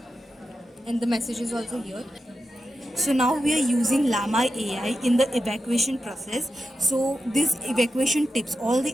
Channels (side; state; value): both; normal; correlation 0.89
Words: and the message is also here. So now we are using Llama AI in the evacuation process. So these evacuation tips, all